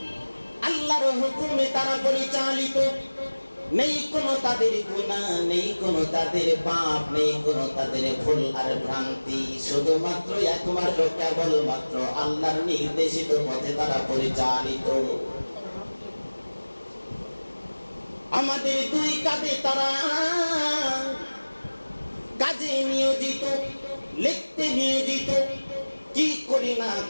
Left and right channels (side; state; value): both; inverted; correlation -1.00